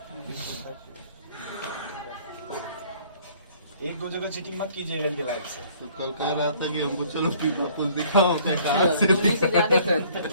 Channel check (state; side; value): inverted; both; correlation -0.57